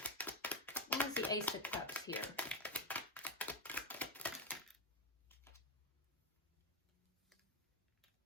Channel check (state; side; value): normal; both; correlation 0.06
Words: Why is the Ace of Cups here?